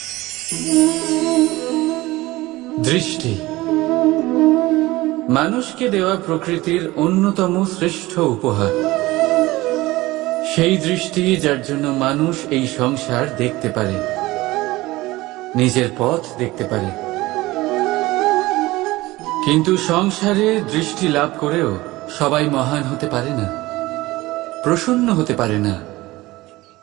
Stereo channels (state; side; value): quieter; left; 19.2 dB